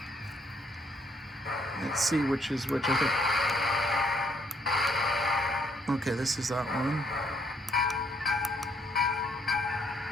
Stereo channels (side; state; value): both; normal; correlation 0.69